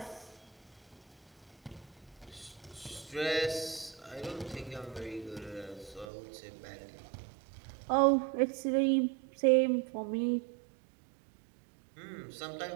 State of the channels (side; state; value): left; drops out; at 6.1 s